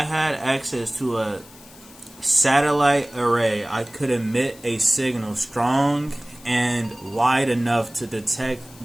had access to a satellite array, I could emit a signal strong and wide enough to detect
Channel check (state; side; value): noise; left; hiss, 22 dB below the sound